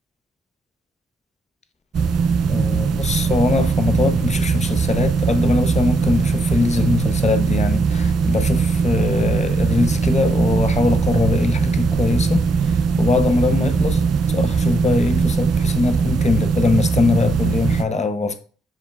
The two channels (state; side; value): normal; both; correlation 0.77